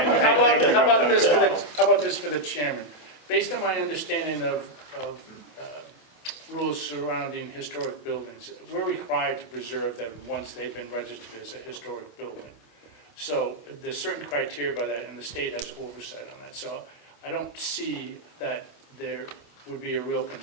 about this for the chairman? Based on my understanding of rules surrounding historic buildings, we're required to preserve them once they've been registered as a historic building. So there's certain criteria by that, and the state has oversight on that. So I don't see that there would be a real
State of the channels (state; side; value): late; right; 27 ms